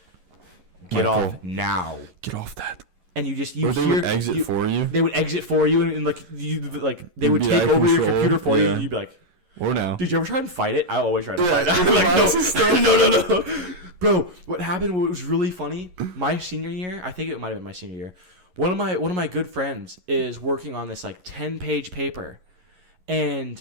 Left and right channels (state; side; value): late; left; 11 ms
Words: "Get Michael, off now!" Get off that. And you Or they would exit for you. They would exit for you, and like they would be take out over of your control. computer for you. Yeah. And you'd be like, Or now. "Did you ever try and fight it?" I always try to fight it. Yeah, I'm like, no. no. Bro, what happened? What was really funny? My senior year, I think it might have been my senior year. One of my good friends is working on this like 10-page paper,